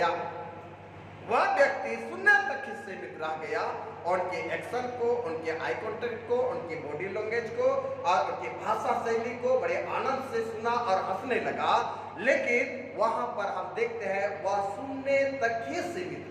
वह व्यक्ति सुनने तक ही सीमित रह गया। उनके एक्शन को, उनके आई कॉन्टेक्ट को, उनकी बॉडी लैंग्वेज को और उनकी भाषा शैली को बड़े आनंद से सुना और हंसने लगा। लेकिन वहां पर हम देखते हैं वह सुनने तक ही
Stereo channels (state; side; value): identical; both; correlation 1.00